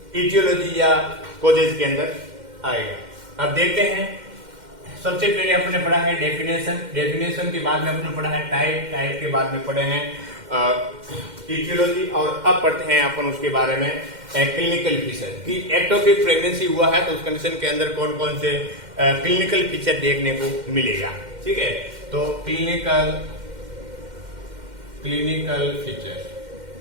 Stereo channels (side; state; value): left; late; 2.1 ms